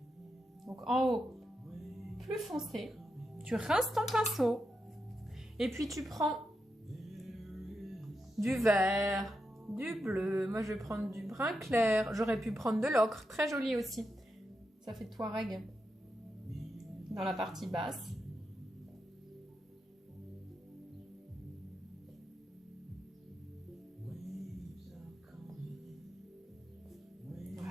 Donc, en haut, plus foncé. Tu rinces ton pinceau. Et puis, tu prends du vert, du bleu. Moi, je vais prendre du brun clair. J'aurais pu prendre de l'ocre. Très joli aussi. Ça fait Touareg dans la partie basse.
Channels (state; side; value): normal; both; correlation 0.86